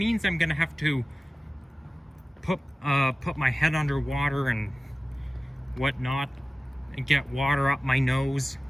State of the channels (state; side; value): normal; both; correlation 0.96